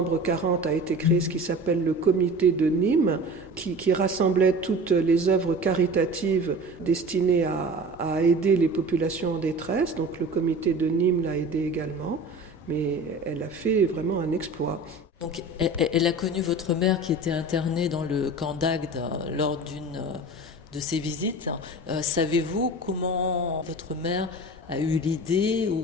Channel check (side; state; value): both; normal; correlation 0.37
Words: 40, a été créé ce qui s'appelle le comité de Nîmes, qui rassemblait toutes les œuvres caritatives destinées à aider les populations en détresse. Donc le comité de Nîmes l'a aidé également. Mais elle a fait vraiment un exploit. Donc, elle a connu votre mère qui était internée dans le camp d'Agde lors d'une de ses visites. Savez-vous comment votre mère a eu l'idée